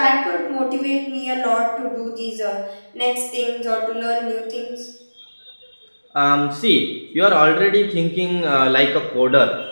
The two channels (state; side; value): inverted; both; correlation -1.00